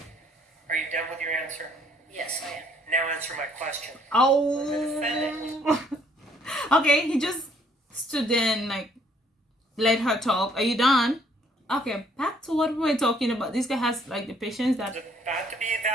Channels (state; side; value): normal; both; correlation 0.64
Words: Are you done with your answer? Yes, I am. Now answer my question. Oh. Okay, he just stood there and like let her talk. Are you done? Okay, back to what we were talking about. This guy has like the patience that It's about to be